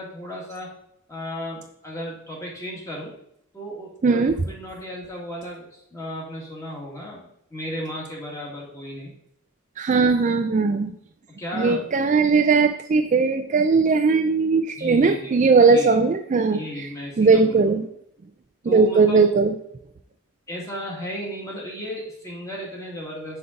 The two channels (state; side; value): quieter; left; 3.9 dB